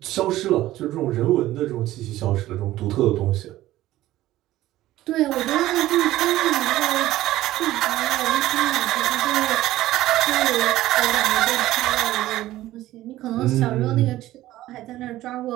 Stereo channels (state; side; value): quieter; left; 15.3 dB